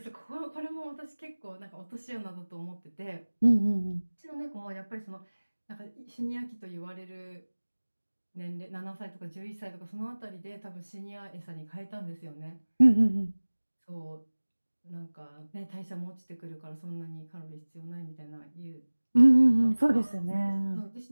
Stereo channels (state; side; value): inverted; both; correlation -1.00